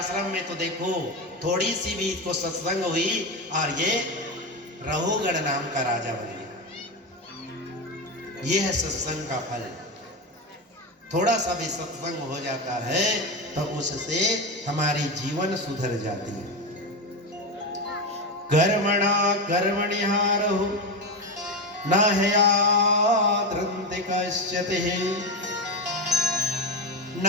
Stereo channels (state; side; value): normal; both; correlation 0.15